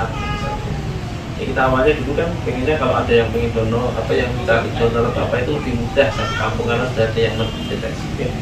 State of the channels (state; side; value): identical; both; correlation 1.00